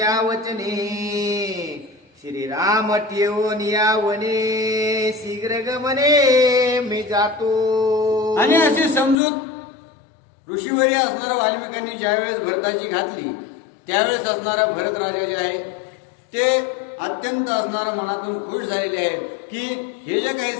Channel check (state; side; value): drops out; right; at 9.2 s